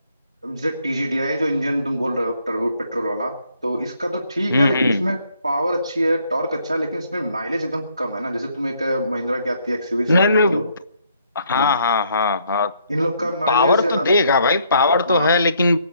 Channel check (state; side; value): inverted; both; correlation -0.69